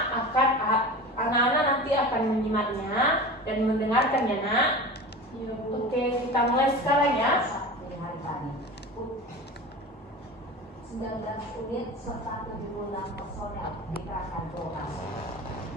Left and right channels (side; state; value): both; normal; correlation 0.33